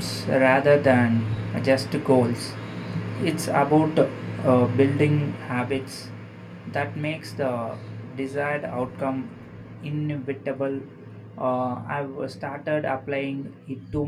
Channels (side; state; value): both; identical; correlation 1.00